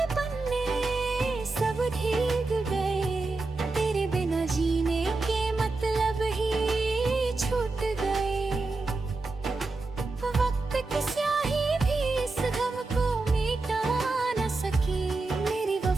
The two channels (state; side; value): quieter; left; 3.5 dB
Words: पन्ने सब भीग गए, तेरे बिना जीने के मतलब ही छूट गए। वक्त की स्याही भी इस गम को मिटा न सकी, मेरी